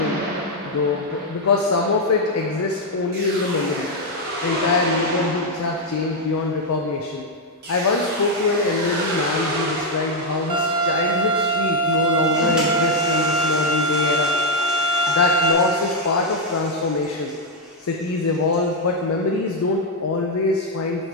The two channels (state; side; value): normal; both; correlation 0.00